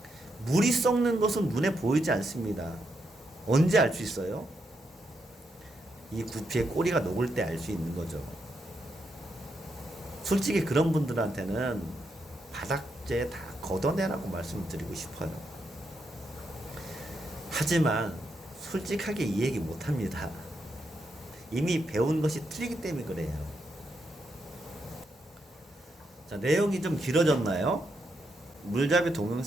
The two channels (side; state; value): both; normal; correlation 0.81